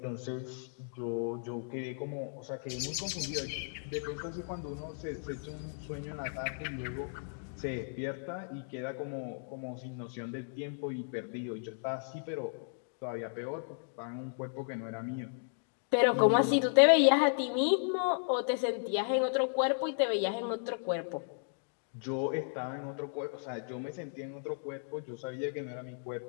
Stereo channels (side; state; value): right; silent; digital silence